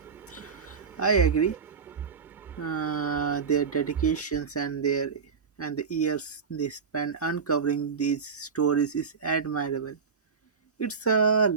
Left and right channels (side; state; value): left; quieter; 5.8 dB